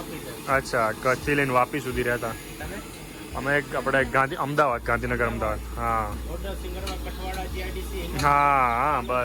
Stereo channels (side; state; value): both; identical; correlation 1.00